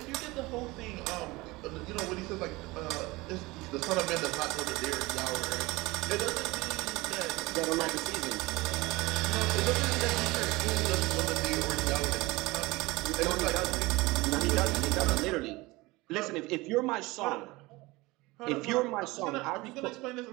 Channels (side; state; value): left; quieter; 21.9 dB